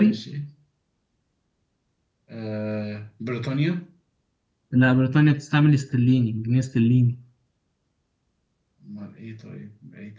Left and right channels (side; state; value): both; identical; correlation 1.00